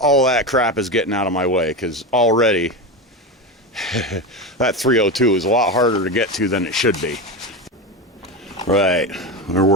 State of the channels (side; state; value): both; normal; correlation 0.18